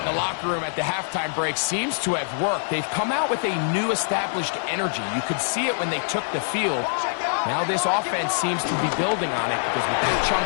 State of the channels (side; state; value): right; silent; 62 dB below the other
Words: in the locker room at the halftime break seems to have worked. They've come out with a new established energy. You could see it when they took the field. Now this offense seems to be building on it because with that